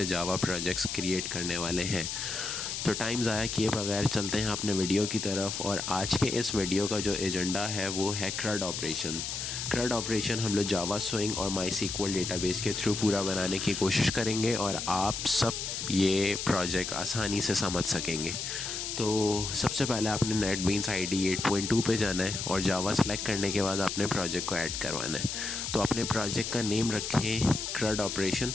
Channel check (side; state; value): left; noise; hiss, 4 dB below the sound